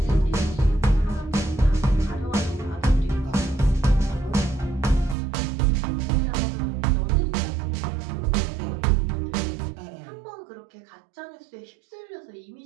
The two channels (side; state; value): left; drops out; at 5.2 s